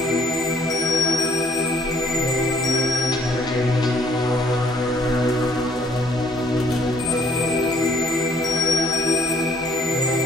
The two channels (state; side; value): normal; both; correlation 0.62